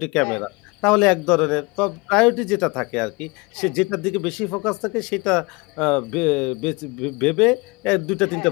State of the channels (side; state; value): right; quieter; 26.5 dB